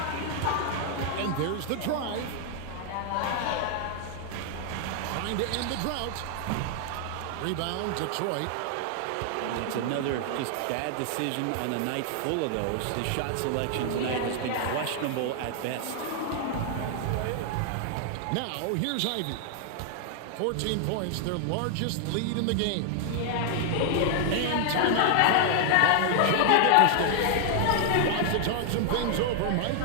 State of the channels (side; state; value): both; different; correlation 0.00